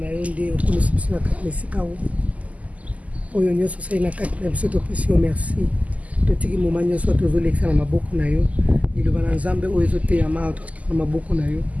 yo nde okomisi biso na kati na esika oyo nyonso osali na kati na biso topesi yo merci totiki moma nyonso tozolekisa na maboko na yo liloba na nzambe oyo ezoteyama totika na maboko na yo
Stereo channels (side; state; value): left; late; 0.072 ms